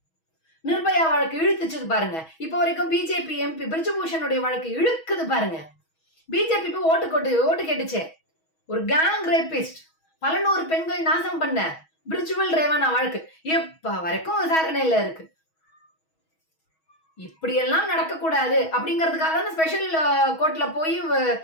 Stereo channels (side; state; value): right; late; 6.2 ms